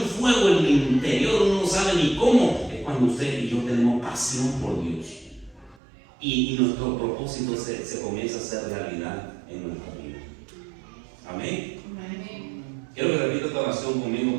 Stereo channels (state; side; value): drops out; left; at 5.8 s